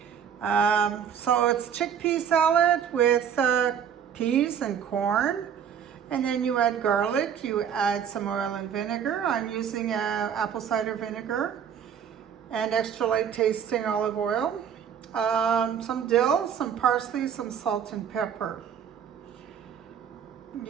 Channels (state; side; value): quieter; left; 8.1 dB